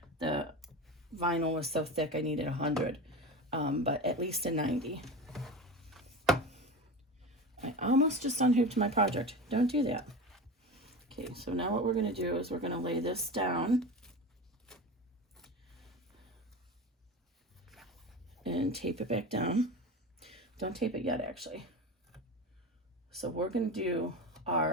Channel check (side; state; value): both; normal; correlation 0.28